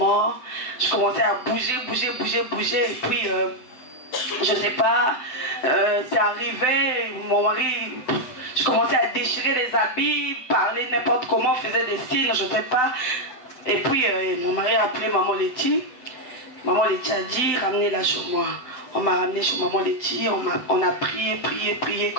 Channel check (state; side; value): late; right; 7.9 ms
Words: Je commençais à bouger. Et puis, je sais pas, c'est arrivé, mon mari, je commençais à déchirer les habits, parler n'importe comment, faisait des signes, je sais pas. Et puis, mon mari a appelé Maman Letty. Maman Letty a dit, ramenez-la chez moi. On m'a ramené chez Maman Letty, on a prié.